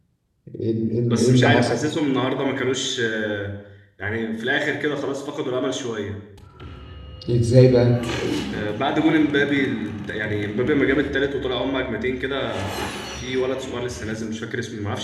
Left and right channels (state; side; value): identical; both; correlation 1.00